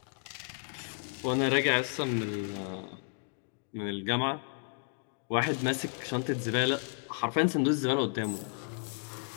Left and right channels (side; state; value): right; silent; 56 dB below the other